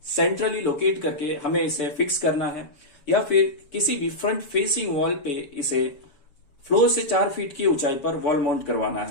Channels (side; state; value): right; late; 7.1 ms